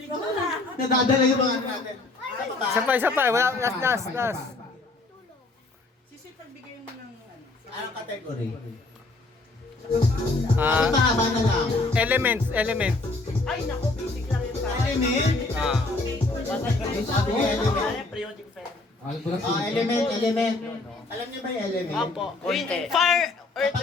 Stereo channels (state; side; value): quieter; right; 3.2 dB